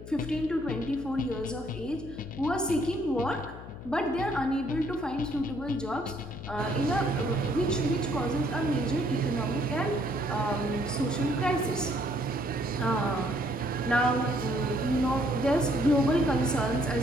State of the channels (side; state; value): left; noise; hum, 13 dB below the sound